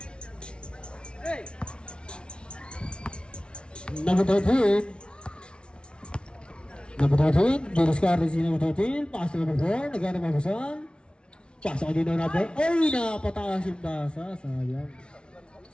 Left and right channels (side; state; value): right; late; 0.057 ms